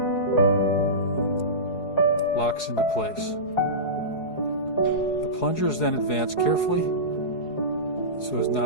locks into place. The plunger is then advanced carefully so as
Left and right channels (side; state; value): right; late; 4.7 ms